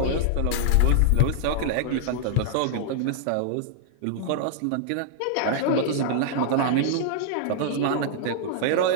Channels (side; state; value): both; different; correlation -0.01